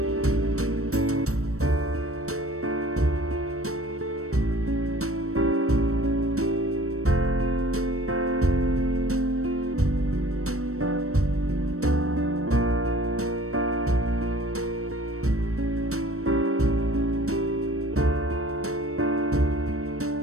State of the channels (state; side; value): late; left; 0.64 ms